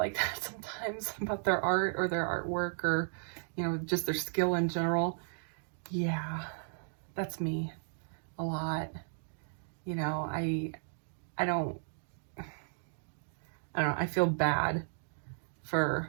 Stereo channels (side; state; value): left; silent; digital silence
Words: that sometimes about their art or their artwork, or, you know, just their skill in general? Yeah, that's me a lot. You know, I don't know, I feel bad for